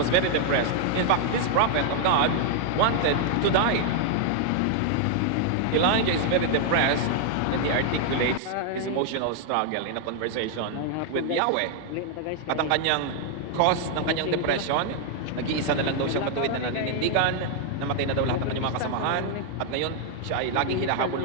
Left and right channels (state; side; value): different; both; correlation 0.00